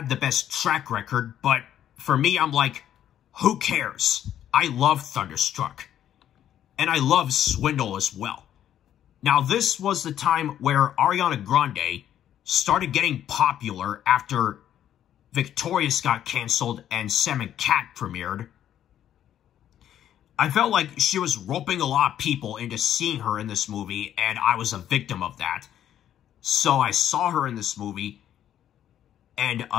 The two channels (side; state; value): right; quieter; 10.8 dB